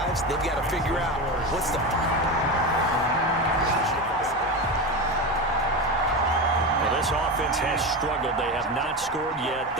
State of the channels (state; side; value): normal; both; correlation 0.21